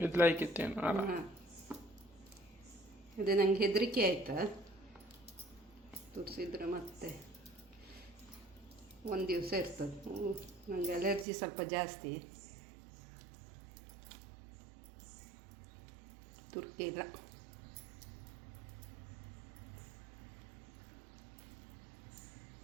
ಇದು ಲೈಕಿತ್ತೇನು? ಅದೇ ನಂಗೆ ಹೆದರಿಕೆ ಆಯ್ತಾ, ತುರಿಸಿದ್ರೆ ಮತ್ತೆ ಒಂದು ದಿವಸ ಇರ್ತದೆ. ನನಗೆ ಅಲರ್ಜಿ ಸ್ವಲ್ಪ ಜಾಸ್ತಿ, ತುರ್ಕಿಲ್ಲ.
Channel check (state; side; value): drops out; left; at 11.2 s